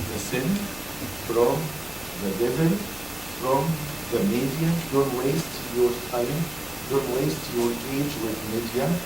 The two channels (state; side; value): noise; left; hum, 20 dB below the sound